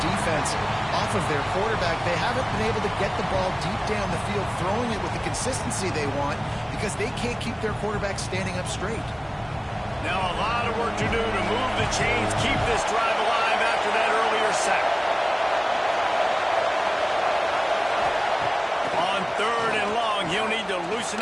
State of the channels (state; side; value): identical; both; correlation 1.00